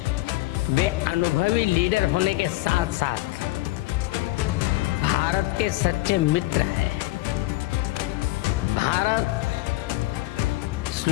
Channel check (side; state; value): right; quieter; 18.9 dB